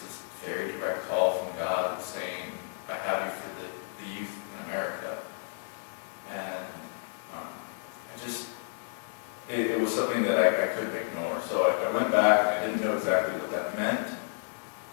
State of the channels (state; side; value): silent; right; 57 dB below the other